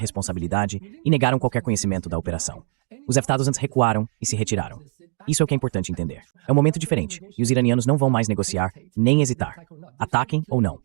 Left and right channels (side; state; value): left; quieter; 37.4 dB